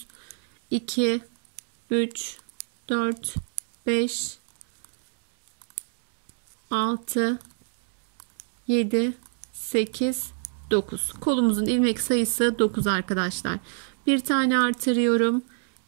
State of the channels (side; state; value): left; silent; digital silence